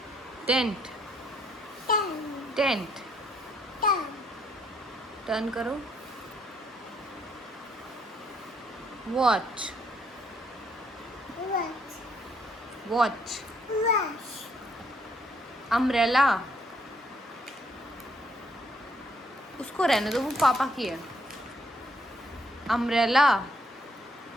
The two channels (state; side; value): normal; both; correlation 0.70